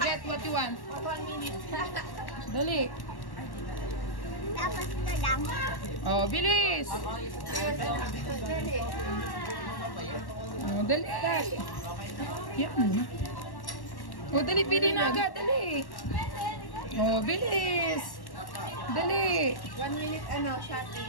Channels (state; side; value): late; right; 1.1 ms